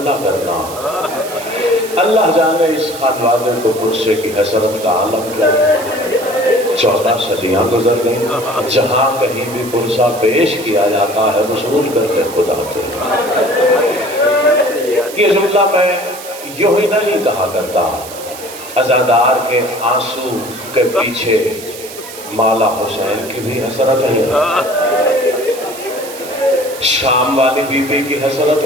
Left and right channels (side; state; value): right; noise; hiss, 14 dB below the sound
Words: نہ کرنا۔ اللہ جانے اس خانوادے کو پرسے کی حسرت کا عالم کیا۔ 14 صدیاں گزر گئیں، جہاں کہیں بھی پرسہ پیش کیا جاتا ہے وصول کرتے خود آتے ہیں۔ یہ جملہ میں یوں ہی نہیں کہا کرتا، عزادار کے آنسو کے پیچھے مولا حسین کی بھی حسرت ہے، شام والی بی بی کی حسرت